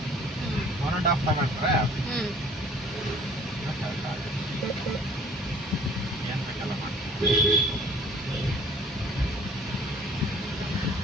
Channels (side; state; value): both; normal; correlation 0.53